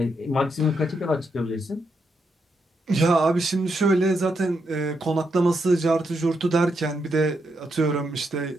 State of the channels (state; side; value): normal; both; correlation 0.81